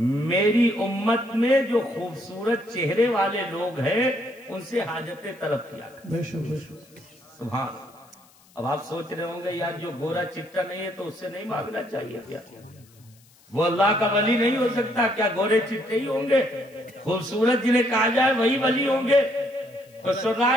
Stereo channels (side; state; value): left; noise; hiss, 29 dB below the sound